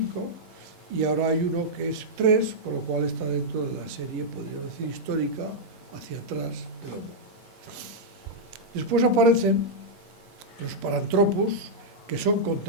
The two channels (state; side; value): normal; both; correlation -0.06